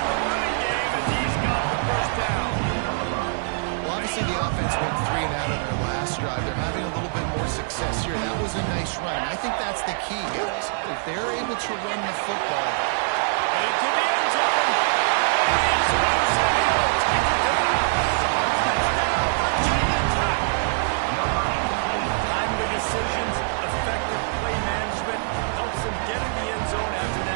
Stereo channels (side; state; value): left; silent; digital silence